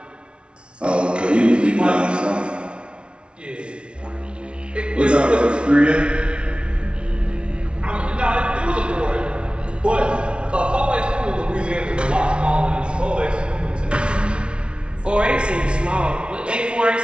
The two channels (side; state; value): left; late; 0.058 ms